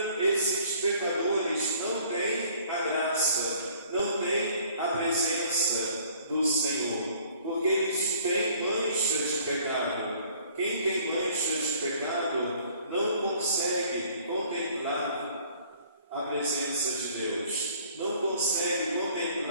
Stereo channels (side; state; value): both; inverted; correlation -0.56